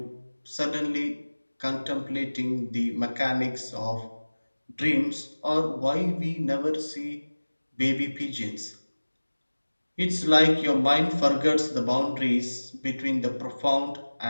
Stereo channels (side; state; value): both; inverted; correlation -1.00